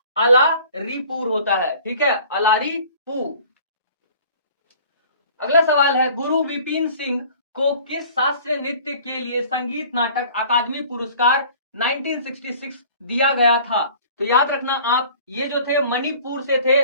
अलारीपुर होता है। ठीक है, अलारीपुर। अगला सवाल है, गुरु विपिन सिंह को किस शास्त्रीय नृत्य के लिए संगीत नाटक अकादमी पुरस्कार 1966 दिया गया था। तो याद रखना आप, ये जो थे मणिपुर से थे,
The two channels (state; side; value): inverted; both; correlation -0.48